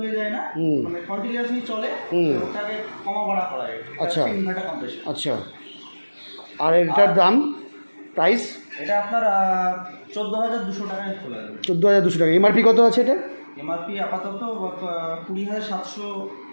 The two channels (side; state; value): both; inverted; correlation -1.00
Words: হয়ে যায় না, মানে কন্টিনিউয়াসলি চলে, ওটাকে কমা বাড়া করা যায়। আচ্ছা। Inverter compressor. আচ্ছা, আর এটার দাম প্রাইস? এটা আপনার 14,200 টাকায় চলে যাবে। 14,200 টাকা। এমআরপি কত আছে এটা? এমআরপি আপাতত 20,700